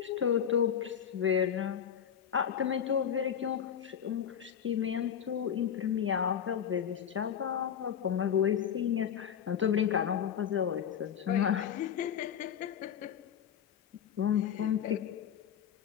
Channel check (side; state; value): right; quieter; 8.6 dB